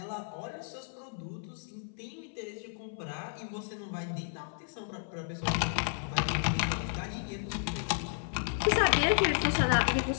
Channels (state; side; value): silent; right; 56 dB below the other